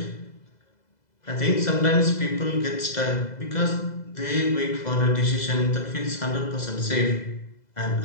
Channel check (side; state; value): right; late; 2.0 ms